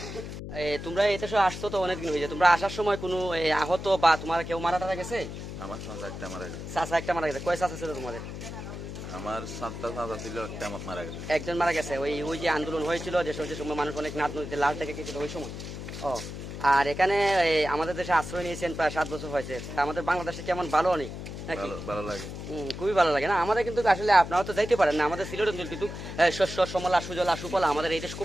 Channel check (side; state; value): left; noise; hum, 9 dB below the sound